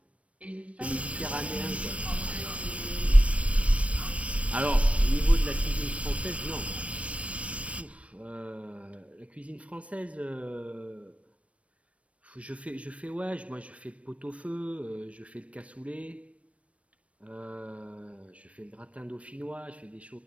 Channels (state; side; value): late; left; 0.063 ms